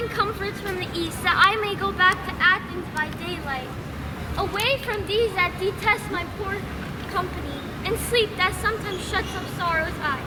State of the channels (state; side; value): identical; both; correlation 1.00